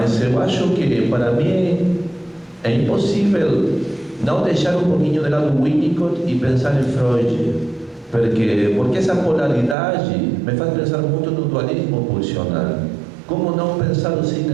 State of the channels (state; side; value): drops out; left; at 9.8 s